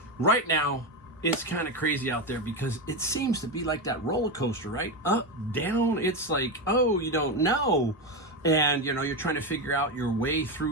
Right now, it's kind of crazy out there because it seems to be like that roller coaster, right? Up, down, it's like, oh, you don't know. And, you know, you're trying to figure out your way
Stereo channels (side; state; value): both; normal; correlation 0.13